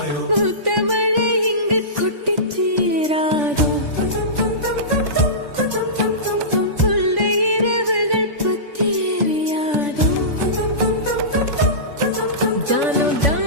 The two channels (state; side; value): late; left; 3.5 ms